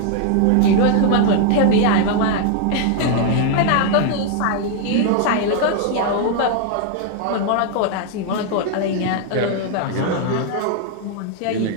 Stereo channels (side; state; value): both; different; correlation 0.00